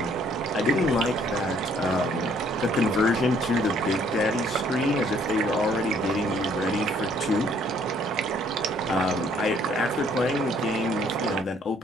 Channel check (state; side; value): normal; both; correlation 0.63